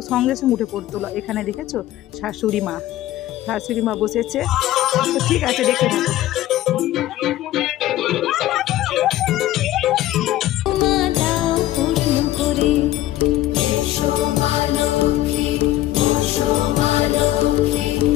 সঙ্গে সঙ্গে উঠে পড়তে হলো। এখানে দেখেছো শাশুড়ি মা বসেছে, তো ঠিক আছে দেখে থাকো। মা দাও পূর্ণ করে। এসো মা লক্ষ্মী, বসো মা লক্ষ্মী,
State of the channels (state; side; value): quieter; right; 14.7 dB